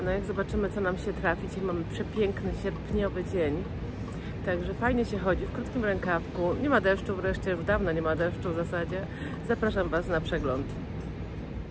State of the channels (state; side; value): identical; both; correlation 1.00